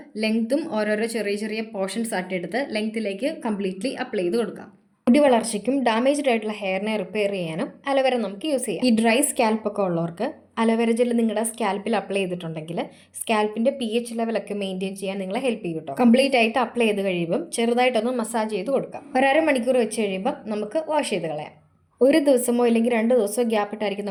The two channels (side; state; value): both; identical; correlation 1.00